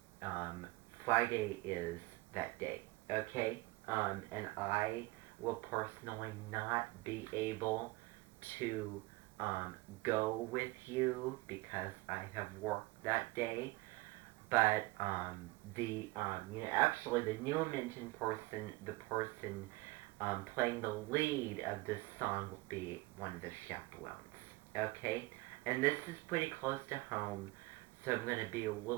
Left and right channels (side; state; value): left; quieter; 21.8 dB